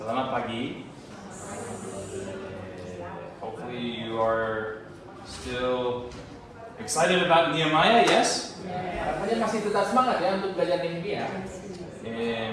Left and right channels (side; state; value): both; identical; correlation 1.00